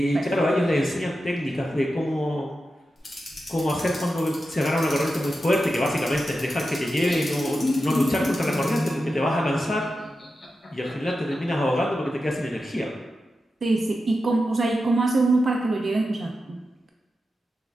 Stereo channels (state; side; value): normal; both; correlation 0.90